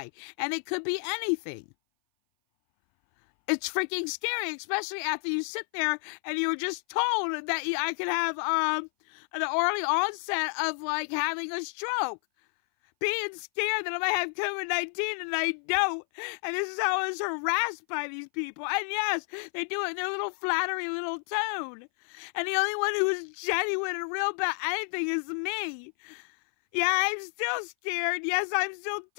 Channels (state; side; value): silent; right; 58 dB below the other